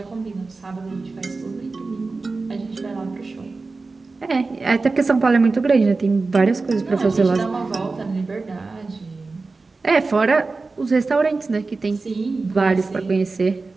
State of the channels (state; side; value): quieter; left; 3.8 dB